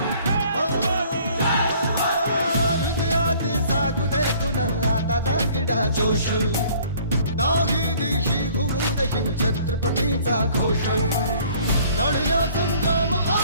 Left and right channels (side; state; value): both; inverted; correlation -0.55